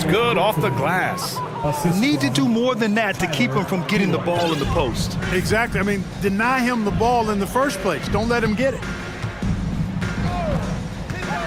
good off the glass. Need to do more than that to keep him from getting the ball in the post. Exactly. I mean, deny him the ball in the first place. Don't let him get it.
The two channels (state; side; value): identical; both; correlation 1.00